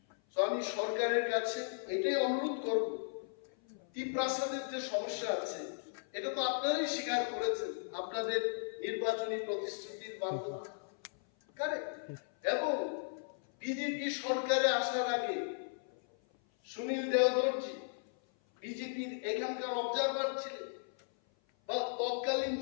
তো আমি সরকারের কাছে এটাই অনুরোধ করব, ত্রিপ্রাসাদের যে সমস্যা আছে এটা তো আপনারাই স্বীকার করেছেন আপনাদের নির্বাচনী প্রতিশ্রুতির মাধ্যমে, কারেক্ট? এবং বিজেপি সরকারে আসার আগে সুনীল দেওধরজি বিজেপির এখানকার অবজারভার ছিলেন, বা তৎকালীন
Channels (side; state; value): right; silent; 54 dB below the other